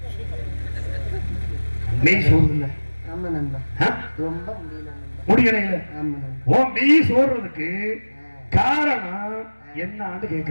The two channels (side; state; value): both; inverted; correlation -1.00